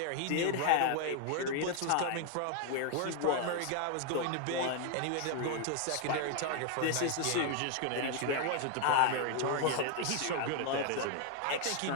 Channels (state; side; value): different; both; correlation 0.00